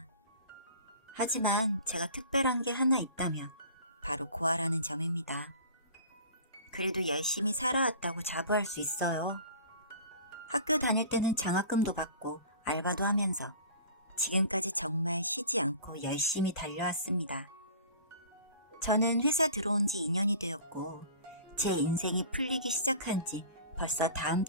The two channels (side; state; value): both; inverted; correlation -0.42